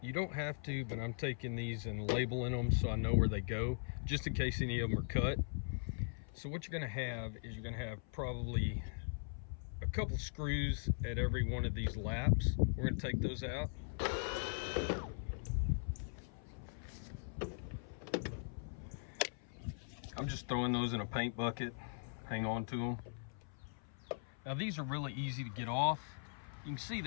You don't have to, but I'm taking these and labeling them so I know where they go, just in case any of them are cut. So what you're going to have is you're going to have probably a couple screws at every one of these laps. We're going to take those out. I'm just throwing those in a paint bucket. Hang on to them. Now these are really easy to get off. You can see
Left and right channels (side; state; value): right; silent; 51 dB below the other